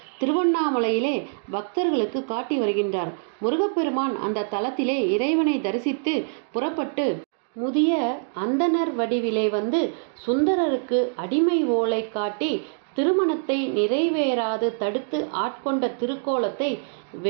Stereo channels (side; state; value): left; silent; digital silence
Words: திருவண்ணாமலையிலே பக்தர்களுக்கு காட்டி வருகின்றார். முருகப்பெருமான் அந்த தலத்திலே இறைவனை தரிசித்து புறப்பட்டு முதிய அந்தணர் வடிவிலே வந்து சுந்தரருக்கு அடிமை ஓலை காட்டி திருமணத்தை நிறைவேறாது தடுத்து ஆட்கொண்ட திருக்கோலத்தை